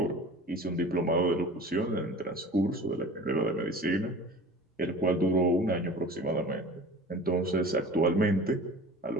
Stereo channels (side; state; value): both; normal; correlation 0.40